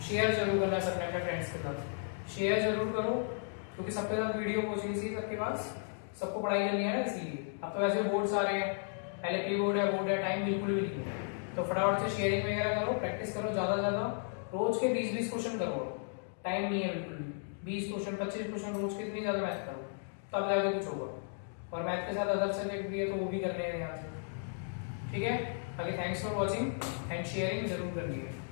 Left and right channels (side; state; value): right; silent; digital silence